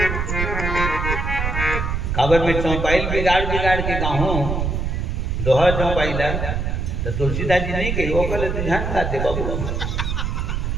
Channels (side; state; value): right; noise; rumble, 1 dB below the sound